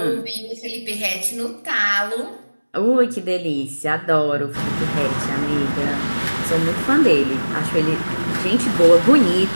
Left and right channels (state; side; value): inverted; both; correlation -1.00